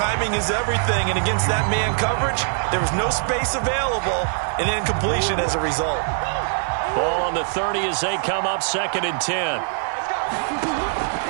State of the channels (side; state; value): left; silent; digital silence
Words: is everything. And against that man coverage, there was no space available, and incompletion as a result. Ball on the 30 as they come up, 2nd and 10.